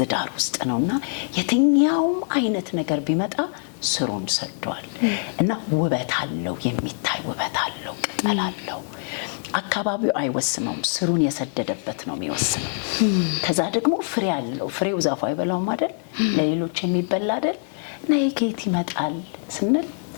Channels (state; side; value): silent; right; digital silence